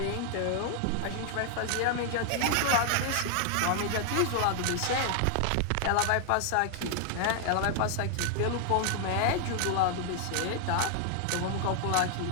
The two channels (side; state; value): both; different; correlation 0.00